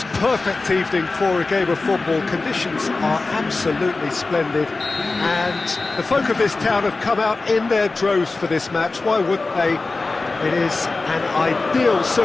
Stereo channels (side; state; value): right; quieter; 3.6 dB